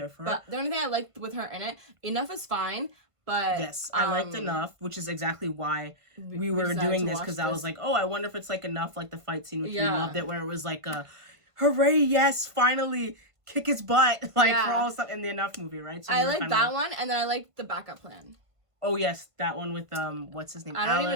for her? But the only thing I liked with her in it, Enough is fine, but yes, I liked Enough, which is exactly why we were doing this, because I was like, oh, I wonder if it's like Enough, like the fight scene, which we loved it, where it was like a hooray, yes, finally kick his butt, like for all stuff in the Enough movie, right? So I like that one, and then I like The Backup Plan. Oh yes, that one with what's his name?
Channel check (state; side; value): late; left; 1.5 ms